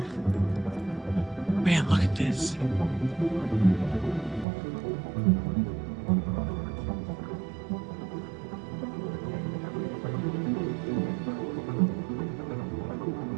Man, look at this.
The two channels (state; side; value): drops out; left; at 4.5 s